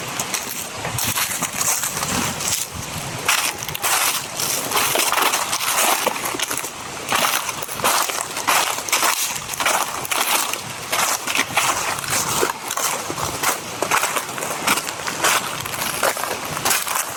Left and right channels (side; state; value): both; identical; correlation 1.00